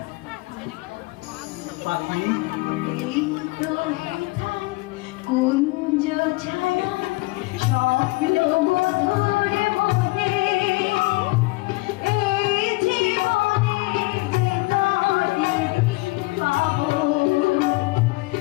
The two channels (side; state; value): right; quieter; 23.4 dB